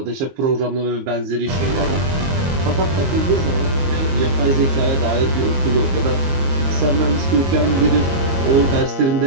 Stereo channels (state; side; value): late; left; 22 ms